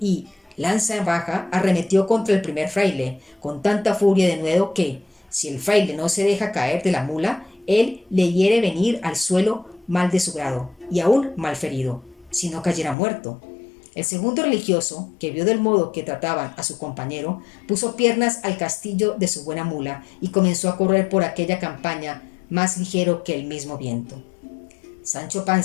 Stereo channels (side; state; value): right; drops out; at 13.0 s